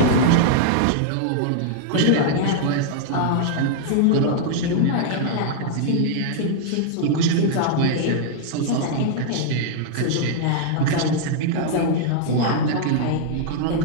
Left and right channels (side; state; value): both; different; correlation -0.01